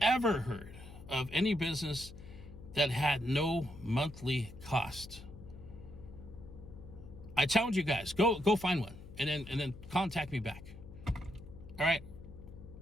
heard of any business that had no monthly cost? I challenge you guys, go find one and then contact me back. All right?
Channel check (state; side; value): noise; left; hum, 15 dB below the sound